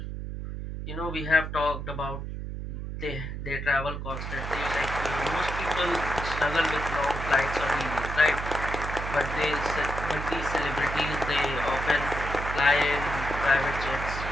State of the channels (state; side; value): noise; right; hum, 6 dB below the sound